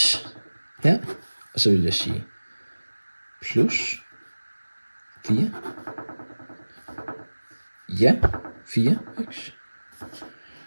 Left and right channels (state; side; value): inverted; both; correlation -1.00